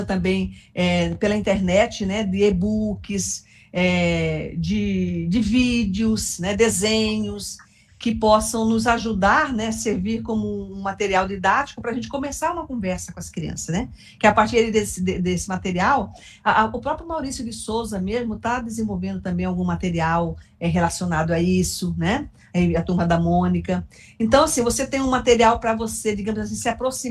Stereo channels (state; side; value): identical; both; correlation 1.00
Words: também pela internet, né? De e-books, de vídeos, né? Desenhos, que possam nos ajudar, né, servir como um material didático para a gente começar uma conversa com as crianças, né? Que a partir desse material, o próprio Maurício de Souza mesmo está desenvolvendo também algum material relacionado a isso, né? A turma da Mônica. Então, assim, você tem um material para você, digamos assim, se